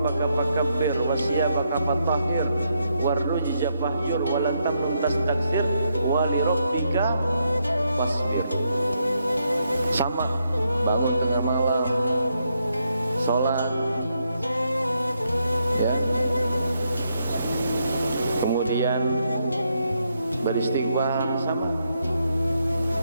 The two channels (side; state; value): both; inverted; correlation -0.79